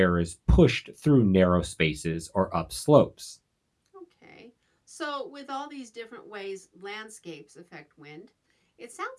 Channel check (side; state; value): both; identical; correlation 1.00